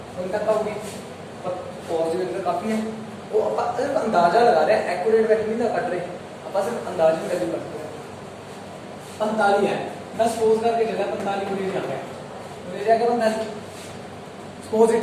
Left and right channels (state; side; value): identical; both; correlation 1.00